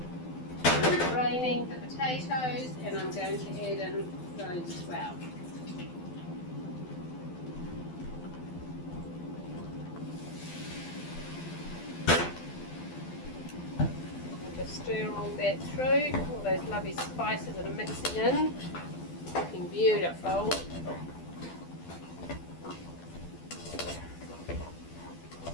I'm draining the potatoes, and I'm going to add in those as well. Stir all that through, all those lovely spices that are mixing in, looking beautiful.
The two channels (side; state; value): right; late; 12 ms